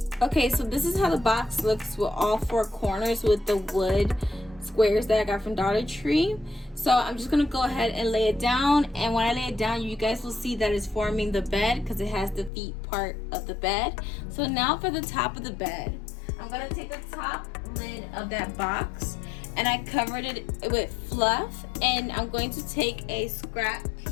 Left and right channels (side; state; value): right; drops out; at 12.5 s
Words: Okay, so this is how the box looks with all four corners with the wood squares that I got from Dollar Tree. So I'm just gonna go ahead and lay it down, and when I lay it down, you guys will see that it's forming the bed because it has the feet part of the bed. So now for the top of the bed, I'm gonna take the top lid of that box and I covered it with fluff, and I'm going to take a scrap